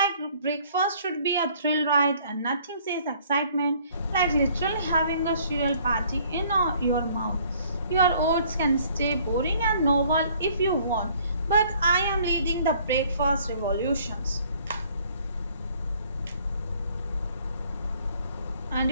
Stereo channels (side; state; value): both; inverted; correlation -0.59